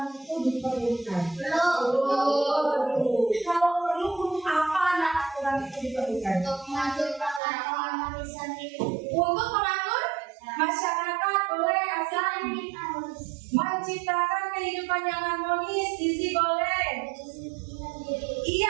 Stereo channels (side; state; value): left; drops out; at 7.4 s